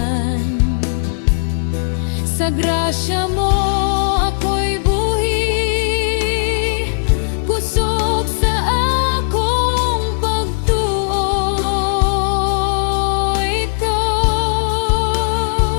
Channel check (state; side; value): silent; right; digital silence